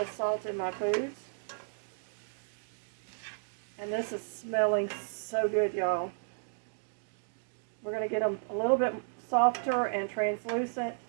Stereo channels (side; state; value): left; silent; digital silence